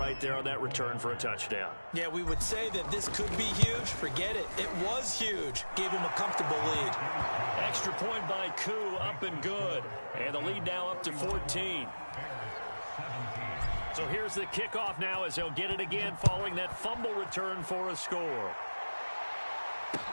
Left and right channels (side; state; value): both; inverted; correlation -1.00